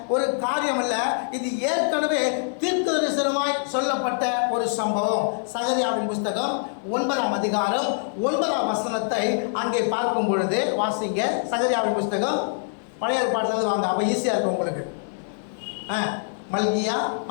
ஒரு காரியம் அல்ல, இது ஏற்கனவே தீர்க்கதரிசனமாய் சொல்லப்பட்ட ஒரு சம்பவம். சகரியாவின் புஸ்தகம் 9ஆம் அதிகாரம் 9ஆம் வசனத்தை அங்கே பார்க்கும் பொழுது வாசிங்க. சகரியாவின் புஸ்தகம் பழைய ஏற்பாட்டிலிருந்து வாங்க, அப்ப ஈஸியா இருக்கும் உங்களுக்கு. மல்கியா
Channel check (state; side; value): silent; right; 58 dB below the other